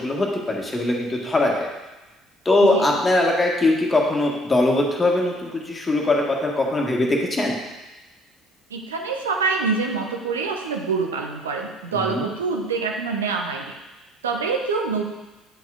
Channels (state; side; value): normal; both; correlation 0.60